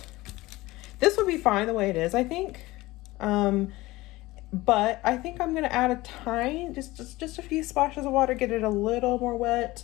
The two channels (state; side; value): quieter; right; 19.5 dB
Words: would be fine the way it is, I think. But I think I'm gonna add a tiny, just a few splashes of water, get it a little more wet.